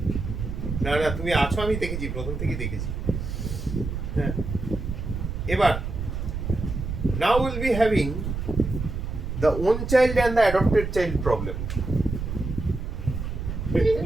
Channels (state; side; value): noise; right; rumble, 5 dB below the sound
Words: না না, তুমি আছো, আমি দেখেছি, প্রথম থেকেই দেখেছি। হ্যাঁ, এবার now we'll be having the own child and the adopted child problem.